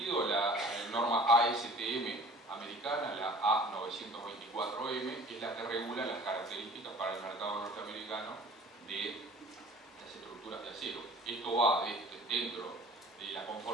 la norma ASTM americana, la A924M, es la que regula las características para el mercado norteamericano de las estructuras de acero. Esto va dentro de la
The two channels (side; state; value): both; normal; correlation 0.47